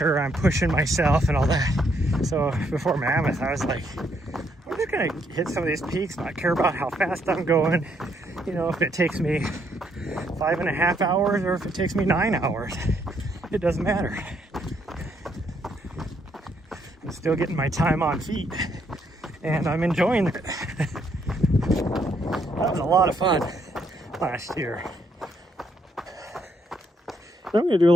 I'm pushing myself and all that. So before Mammoth, I was like, I'm just gonna hit some of these peaks, not care about how fast I'm going. You know, if it takes me 5.5 hours or if it takes me 9 hours, it doesn't matter. I'm still getting my time on feet, and I'm enjoying it. That was a lot of fun last year. So I'm gonna do a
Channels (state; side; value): normal; both; correlation 0.72